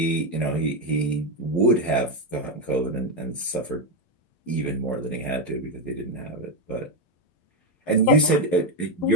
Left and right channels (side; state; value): right; late; 11 ms